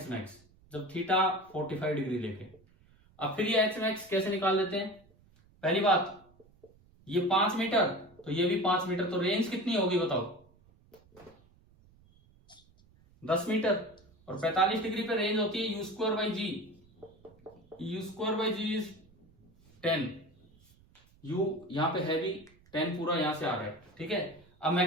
मैक्स, जब थीटा 45 डिग्री लेके। अब फिर ये एच मैक्स कैसे निकाल देते हैं? पहली बात, ये 5 मीटर तो ये भी 5 मीटर, तो रेंज कितनी होगी बताओ? 10 मीटर, और 45 डिग्री पे रेंज होती है u²/g, u²/g इज 10, u यहां पे है भी 10 पूरा यहां से आ रहा है। ठीक है, अब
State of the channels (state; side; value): noise; right; rumble, 29 dB below the sound